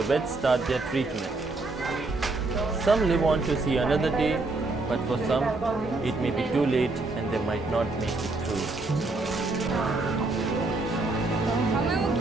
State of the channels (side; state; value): left; quieter; 3.3 dB